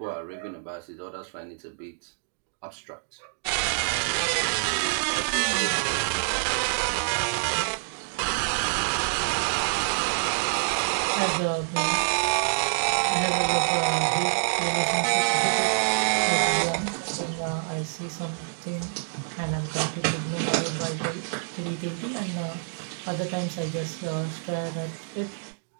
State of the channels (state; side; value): silent; left; digital silence